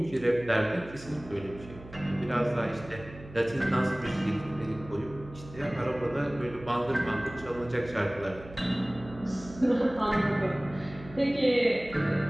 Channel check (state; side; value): noise; right; hum, 17 dB below the sound